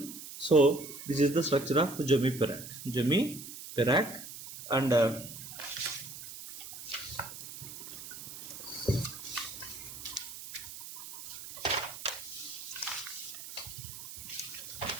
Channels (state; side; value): noise; right; hiss, 11 dB below the sound